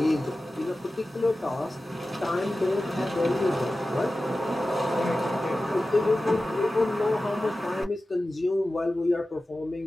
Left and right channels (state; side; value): normal; both; correlation 0.95